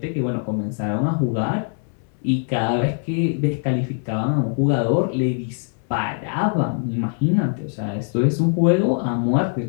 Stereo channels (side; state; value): right; silent; 56 dB below the other